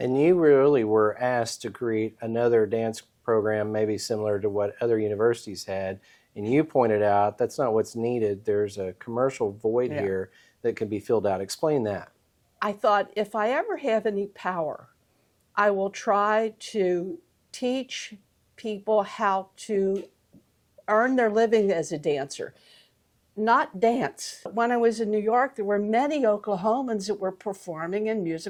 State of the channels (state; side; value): identical; both; correlation 1.00